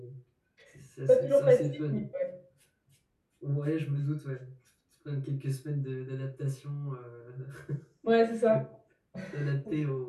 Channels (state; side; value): identical; both; correlation 1.00